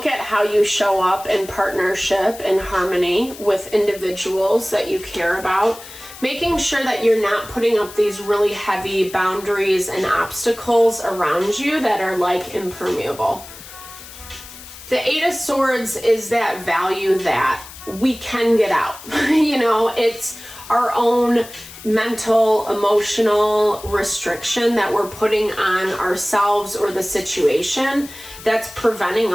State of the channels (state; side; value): noise; left; hiss, 16 dB below the sound